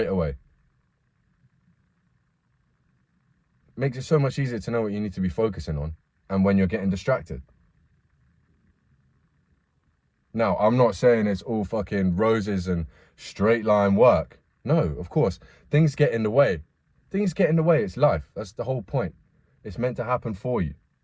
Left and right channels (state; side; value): identical; both; correlation 1.00